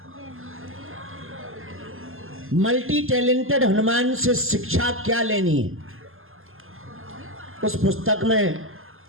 मल्टी टैलेंटेड हनुमान से शिक्षा क्या लेनी है। उस पुस्तक में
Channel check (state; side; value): late; left; 0.60 ms